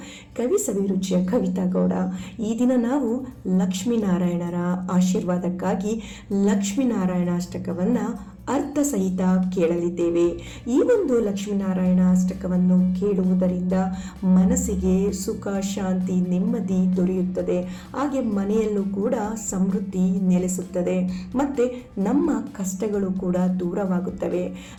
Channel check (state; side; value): identical; both; correlation 1.00